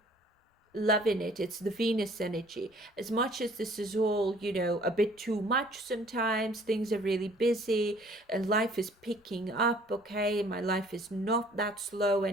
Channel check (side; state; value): both; normal; correlation 0.56